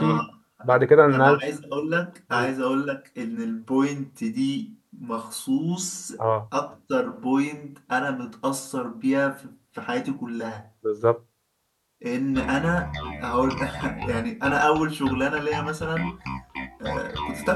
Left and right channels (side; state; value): both; identical; correlation 1.00